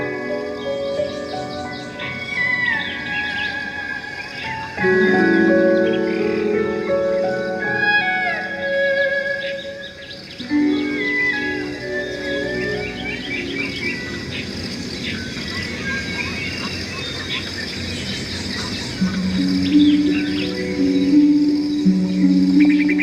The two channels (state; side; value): identical; both; correlation 1.00